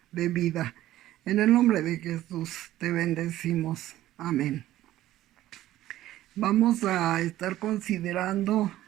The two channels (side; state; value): left; quieter; 14.4 dB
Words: de vida. En el nombre de Jesús te bendecimos. Amén. Vamos a estar considerando